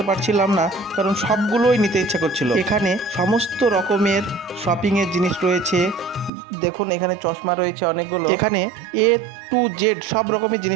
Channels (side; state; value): left; drops out; at 6.3 s